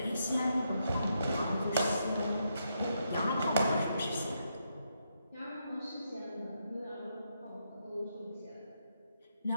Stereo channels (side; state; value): both; inverted; correlation -0.79